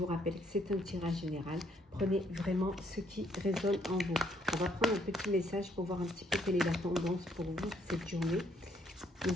rappelle que c'est un tirage général. Prenez vraiment ce qui résonne en vous. On va prendre un petit message pour voir un petit peu quelle est la tendance pour vous cette journée.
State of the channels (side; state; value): both; normal; correlation 0.69